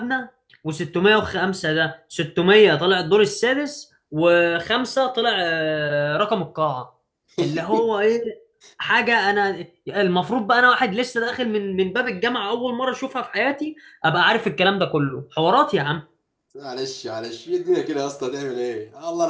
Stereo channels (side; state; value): both; identical; correlation 1.00